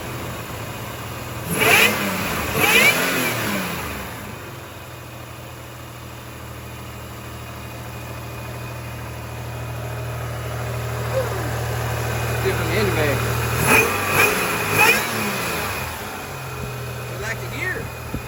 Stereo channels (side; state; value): both; identical; correlation 1.00